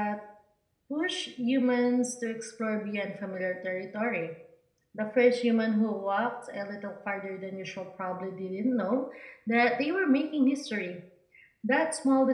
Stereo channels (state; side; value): identical; both; correlation 1.00